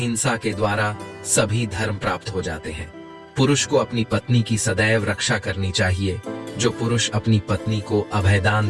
के द्वारा सभी धर्म प्राप्त हो जाते हैं। पुरुष को अपनी पत्नी की सदैव रक्षा करनी चाहिए। जो पुरुष अपनी पत्नी को अभयदान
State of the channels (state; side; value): identical; both; correlation 1.00